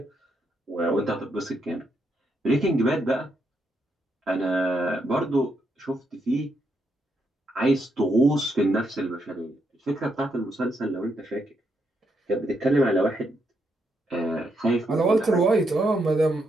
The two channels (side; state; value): both; normal; correlation 0.79